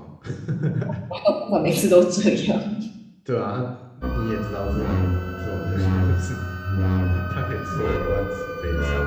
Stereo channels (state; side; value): identical; both; correlation 1.00